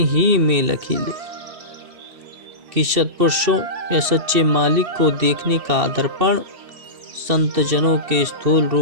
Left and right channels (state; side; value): late; left; 2.7 ms